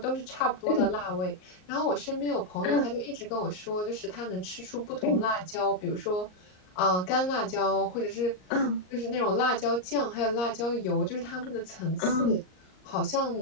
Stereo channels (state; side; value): late; right; 38 ms